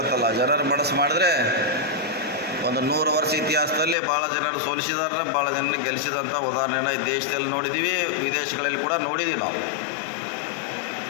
ಅಲ್ಲ. ಜನರ ಮನಸ್ಸು ಮಾಡಿದ್ರೆ ಒಂದು 100 ವರ್ಷ ಇತಿಹಾಸದಲ್ಲಿ ಭಾಳ ಜನರು ಸೋಲಿಸಿದಾರೆ, ಭಾಳ ಜನರು ಗೆಲ್ಲಿಸಿದಂಥ ಉದಾಹರಣೆನ ಈ ದೇಶದಲ್ಲಿ ನೋಡಿದ್ದೀವಿ, ವಿದೇಶಗಳಲ್ಲಿ ಕೂಡ ನೋಡಿದ್ದೀವಿ ನಾವು.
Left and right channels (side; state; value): right; drops out; at 4.0 s